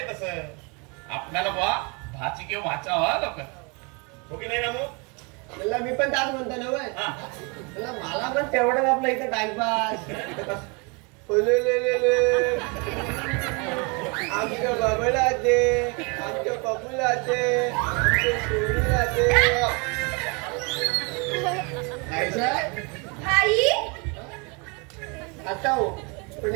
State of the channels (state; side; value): quieter; left; 31.5 dB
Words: तसं. आपल्याला बा भाची किंवा भाचा व्हा लवकर. हो की नाही रामू? त्याला मी पण त्याच म्हणतो ना वय. हा. त्याला मला पण तेवढंच आपलं इथं टाइमपास. आमच्या बाबाला दे, आमच्या पप्पूला दे, आमच्या सोनीला दे. भाई, आता हो पण